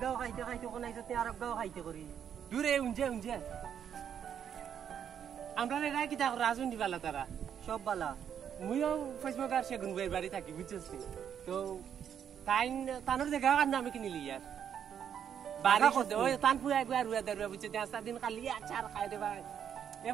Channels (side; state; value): left; quieter; 8.6 dB